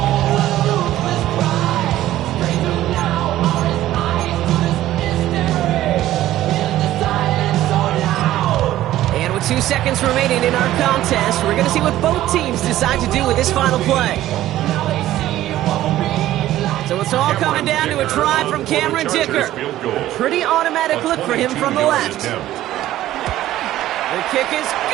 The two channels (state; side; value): quieter; left; 14.1 dB